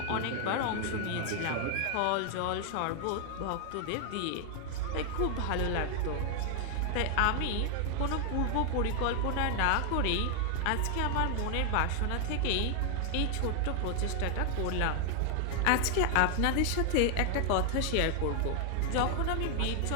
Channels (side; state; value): both; different; correlation 0.00